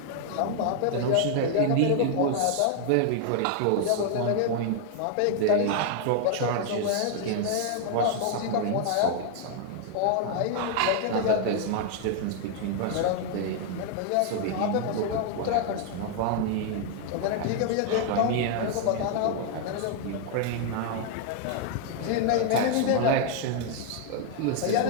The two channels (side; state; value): both; different; correlation 0.00